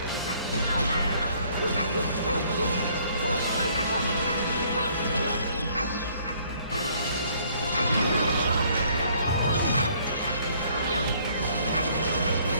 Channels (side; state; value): both; inverted; correlation -0.62